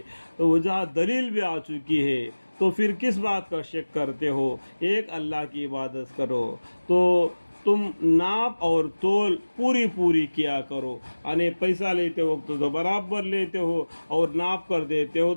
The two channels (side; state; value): both; inverted; correlation -1.00